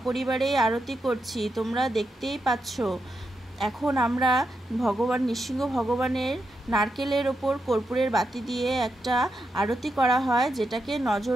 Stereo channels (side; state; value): both; normal; correlation 0.85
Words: আরতি করছি, তোমরা দেখতেই পাচ্ছ। এখন আমরা নৃসিংহ ভগবানের নারকেলের ওপর কর্পূরের বাতি দিয়ে একটা আরতি করা হয়, যেটাকে